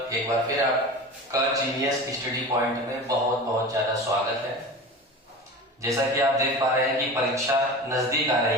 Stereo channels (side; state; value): both; normal; correlation 0.32